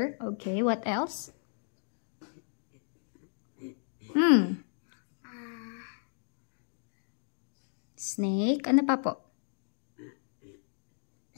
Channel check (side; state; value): right; silent; digital silence